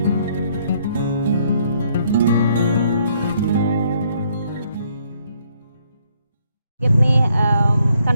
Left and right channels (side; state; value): both; inverted; correlation -0.69